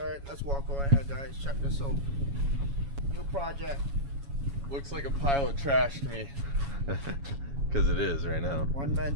right, let's walk over here, guys. Check this out. New project. Looks like a pile of trash to me. Because it is right now. One man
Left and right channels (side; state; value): left; late; 7.1 ms